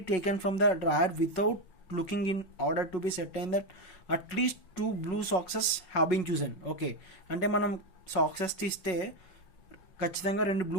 taken from the drawer without looking in order to be certain that at least 2 blue socks have been chosen. Okay, అంటే మనం socks తీస్తే ఖచ్చితంగా 2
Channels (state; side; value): late; right; 5.4 ms